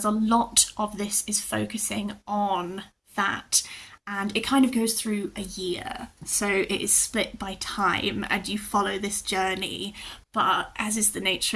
a lot of this is focusing on that, and it kind of goes through a year. So it is split by time and you follow this journey. But as is the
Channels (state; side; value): identical; both; correlation 1.00